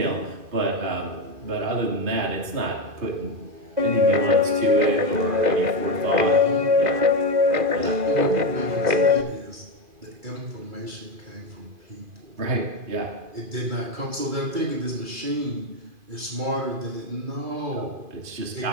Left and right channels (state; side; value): late; left; 2.5 ms